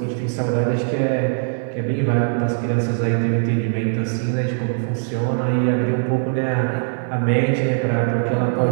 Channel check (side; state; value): left; silent; digital silence